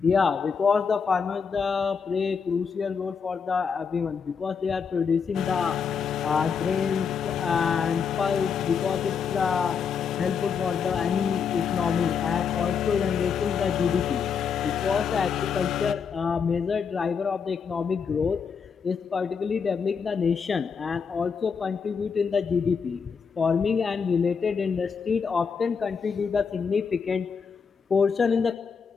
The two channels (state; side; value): quieter; right; 6.1 dB